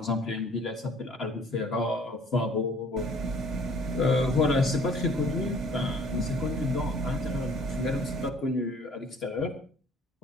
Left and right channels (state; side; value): normal; both; correlation 0.54